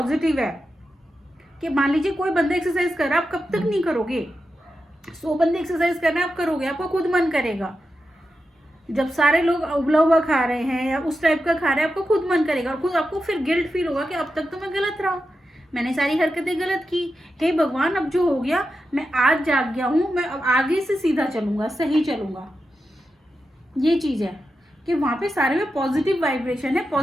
है कि मान लीजिए कोई बंदा एक्सरसाइज कर रहा है, आप कब तक नहीं करोगे? 100 बंदे एक्सरसाइज कर रहे हैं, आप करोगे, आपको खुद मन करेगा। जब सारे लोग उबला हुआ खा रहे हैं या उस टाइप का खा रहे हैं, आपको खुद मन करेगा और खुद आपको फिर गिल्ट फील होगा कि अब तक तो मैं गलत रहा, मैंने सारी हरकतें गलत की। हे भगवान, अब जो हो गया, मैं आज जाग गया हूँ, मैं अब आगे से सीधा चलूंगा, सही चलूंगा। ये चीज है कि वहाँ पे सारे में पॉजिटिव वाइब्रेशन है,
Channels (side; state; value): both; normal; correlation 0.89